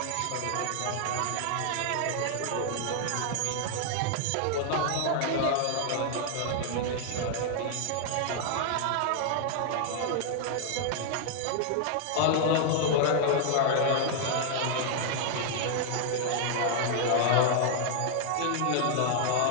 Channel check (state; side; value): different; both; correlation 0.00